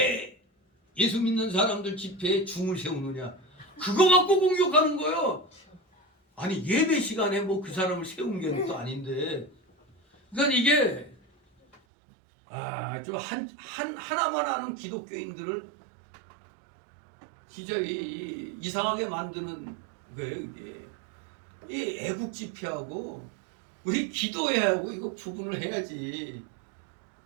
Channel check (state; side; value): drops out; left; at 11.8 s